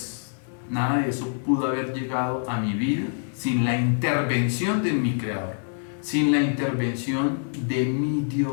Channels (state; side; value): silent; right; 56 dB below the other